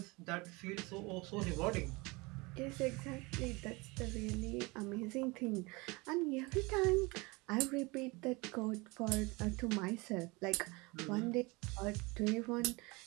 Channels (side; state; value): left; quieter; 25.4 dB